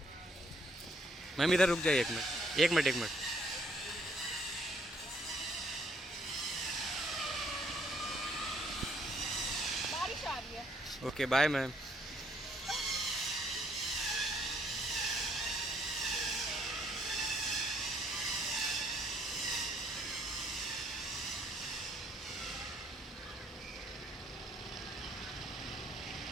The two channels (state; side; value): normal; both; correlation 0.67